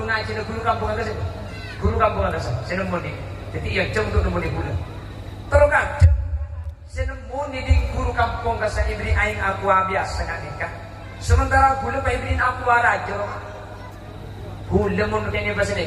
ngaji, guru kampung ada sih. Guru kampung ada sih. Saya nemu di. Jadi yang jauh untuk nemu di boleh. Terus kakek. Senemu di guru kampung kasa ibri aing aku biasa nak nikah. Sementara gula pa ibrin aku raja. Gula mo kanya ba sini?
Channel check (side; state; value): both; identical; correlation 1.00